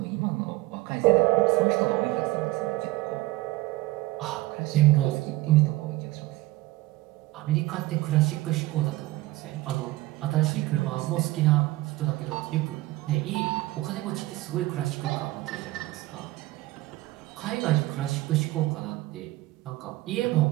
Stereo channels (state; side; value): quieter; left; 18.4 dB